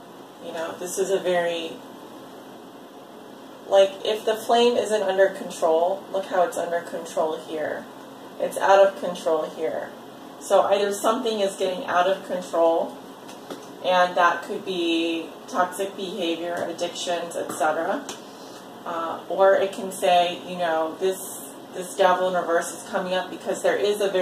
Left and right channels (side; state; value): both; identical; correlation 1.00